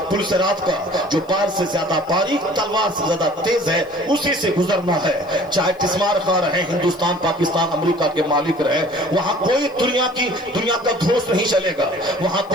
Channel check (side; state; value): left; noise; hiss, 29 dB below the sound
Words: सिरात का, जो बाल से ज्यादा बारीक, तलवार से ज्यादा तेज है, उसी से गुजरना है। चाहे तिस्मार खा रहे, हिंदुस्तान, पाकिस्तान, अमेरिका के मालिक रहे, वहां कोई दुनिया का धोस नहीं चलेगा। वहां